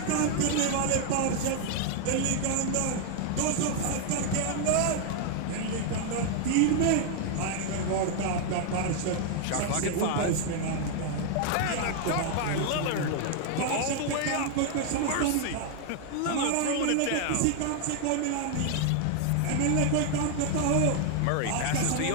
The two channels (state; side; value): different; both; correlation 0.00